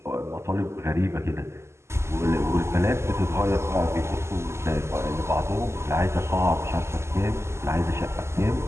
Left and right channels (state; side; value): late; left; 0.13 ms